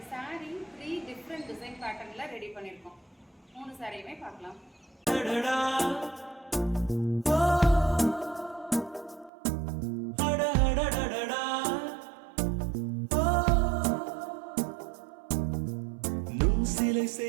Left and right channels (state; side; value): drops out; left; at 9.3 s